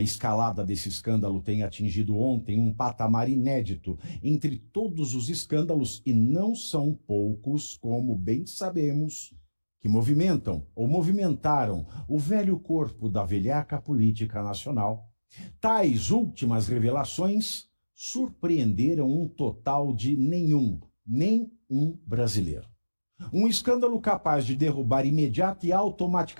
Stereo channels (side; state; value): both; inverted; correlation -1.00